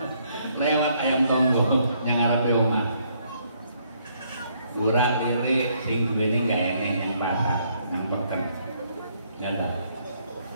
Lewat ayam tonggo yang ngarepe omah. Kurang lirik sing duweni gak enek yang pasar, yang peken. Ya dah.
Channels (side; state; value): both; inverted; correlation -0.69